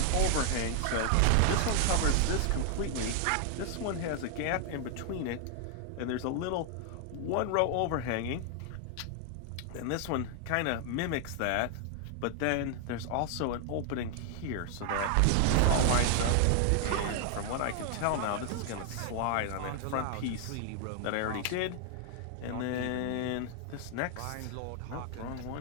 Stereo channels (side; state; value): both; different; correlation 0.00